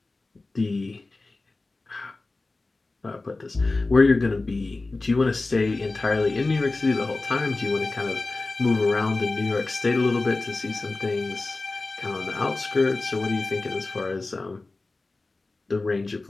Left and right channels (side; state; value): right; quieter; 3.3 dB